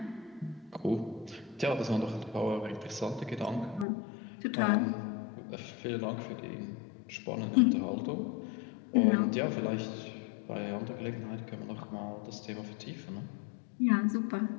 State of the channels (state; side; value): drops out; right; at 3.9 s